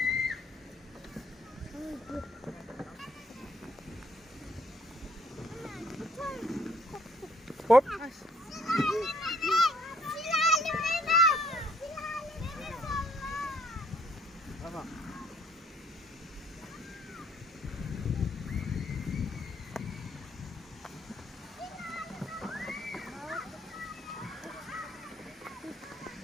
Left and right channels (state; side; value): normal; both; correlation 0.63